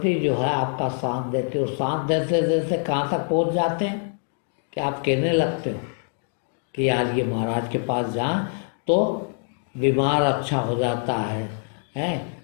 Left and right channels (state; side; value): silent; right; 57 dB below the other